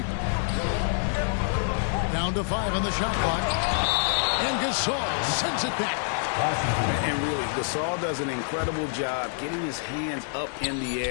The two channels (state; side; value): silent; right; digital silence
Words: Down to 5 on the shot clock. And Gasol sends it back. And really, Gasol does an incredible job getting his hands up in the